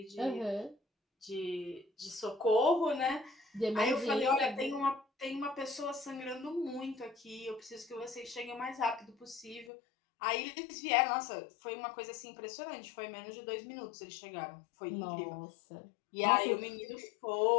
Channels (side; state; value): right; drops out; at 9.7 s